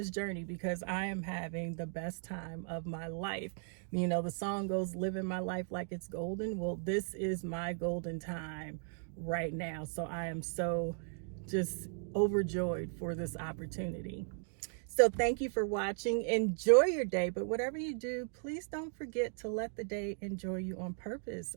journey, because I am having the best time of my life. The song goes, living my life like it's golden. Well, this is my golden time right now. So I am so just overjoyed for this opportunity. So thank you for watching. Enjoy your day, but whatever you do, please don't forget to let the day enjoy you on purpose.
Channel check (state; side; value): silent; left; 53 dB below the other